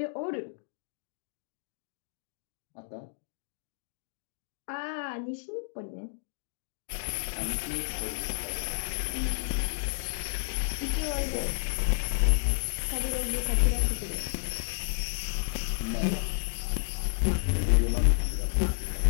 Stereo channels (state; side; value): silent; right; digital silence